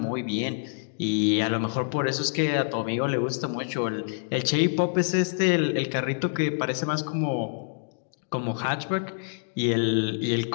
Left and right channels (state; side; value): silent; right; digital silence